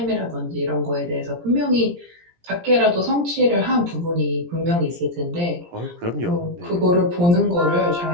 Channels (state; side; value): late; left; 17 ms